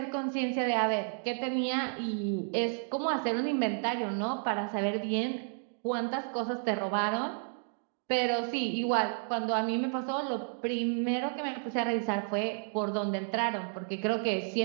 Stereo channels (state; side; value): silent; left; 57 dB below the other